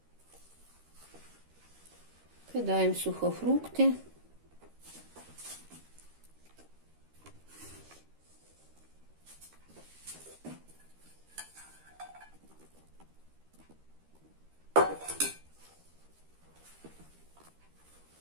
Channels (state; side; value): late; left; 13 ms